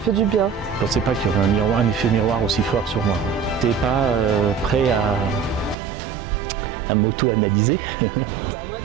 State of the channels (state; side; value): drops out; left; at 5.8 s